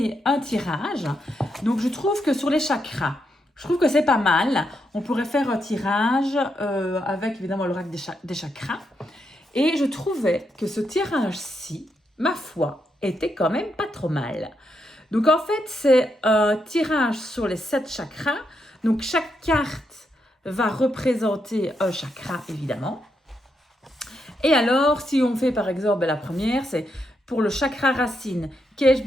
un tirage. Donc je trouve que sur les chakras, je trouve que c'est pas mal. On pourrait faire un tirage avec évidemment l'oracle des chakras. Et je trouvais que ce tirage-ci, ma foi, était quand même pas trop mal. Donc en fait, c'est un tirage sur les 7 chakras. Donc chaque carte va représenter un chakra, évidemment. Et alors, si on fait par exemple la première, c'est pour le chakra racine, qu'ai-je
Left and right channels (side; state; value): both; normal; correlation 0.81